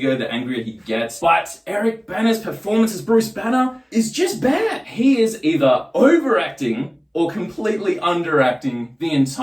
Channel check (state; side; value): identical; both; correlation 1.00